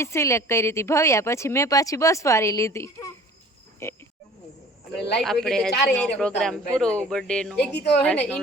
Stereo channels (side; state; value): both; normal; correlation 0.47